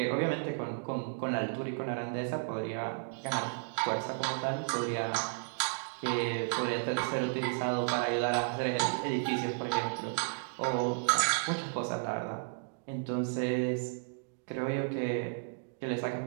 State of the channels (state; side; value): silent; left; digital silence